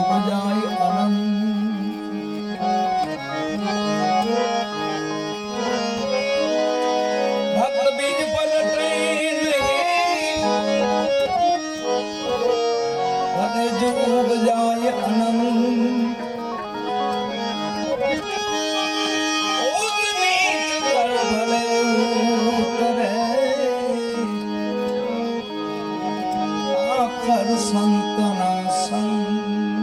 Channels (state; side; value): identical; both; correlation 1.00